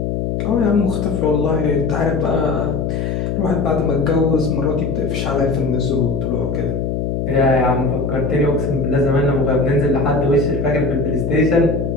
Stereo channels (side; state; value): left; noise; hum, 1 dB below the sound